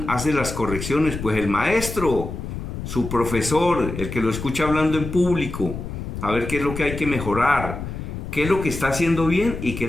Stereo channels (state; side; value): noise; left; rumble, 7 dB below the sound